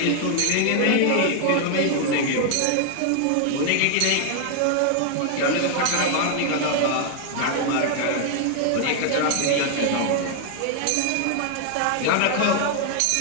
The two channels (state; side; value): different; both; correlation 0.00